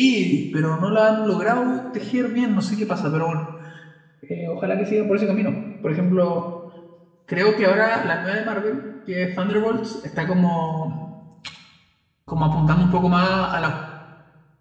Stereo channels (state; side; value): identical; both; correlation 1.00